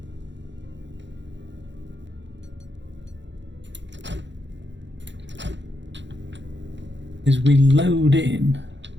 is we load in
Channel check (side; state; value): left; late; 0.53 ms